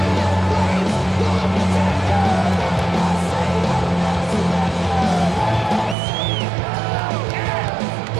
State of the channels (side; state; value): left; drops out; at 6.0 s